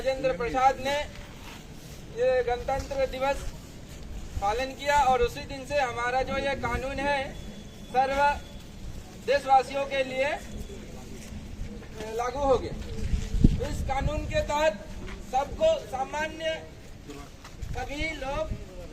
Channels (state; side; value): identical; both; correlation 1.00